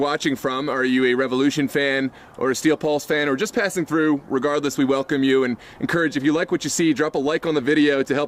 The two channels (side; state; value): both; identical; correlation 1.00